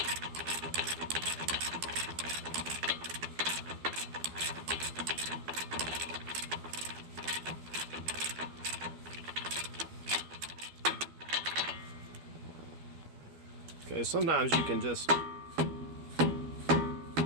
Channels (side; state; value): left; late; 12 ms